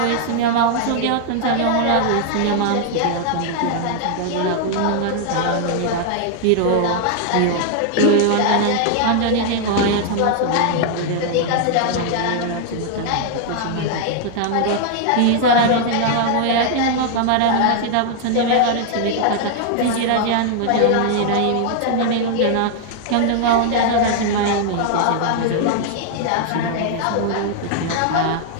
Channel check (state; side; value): different; both; correlation 0.00